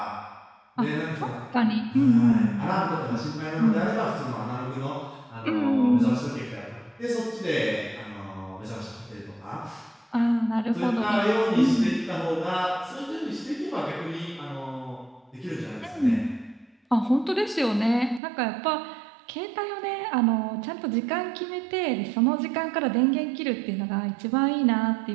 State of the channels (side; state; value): left; drops out; at 18.2 s